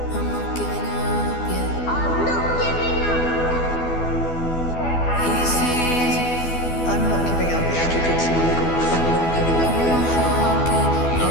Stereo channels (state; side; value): late; right; 12 ms